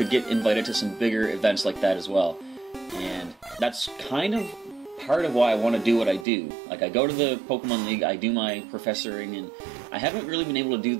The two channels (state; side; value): drops out; left; at 6.2 s